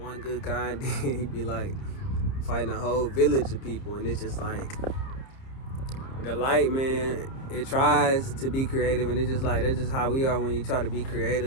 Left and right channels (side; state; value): right; late; 30 ms